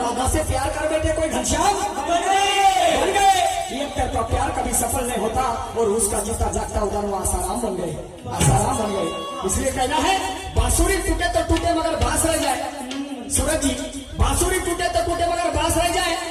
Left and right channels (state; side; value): identical; both; correlation 1.00